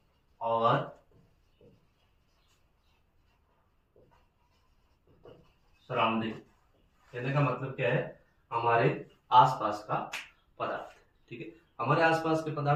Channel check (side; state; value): both; identical; correlation 1.00